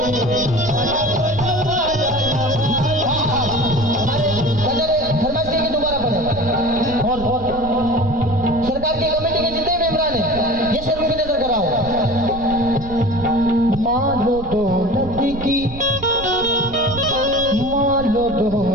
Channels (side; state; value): right; noise; rumble, 13 dB below the sound